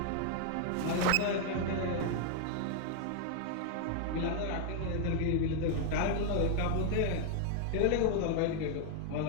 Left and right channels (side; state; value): both; different; correlation 0.00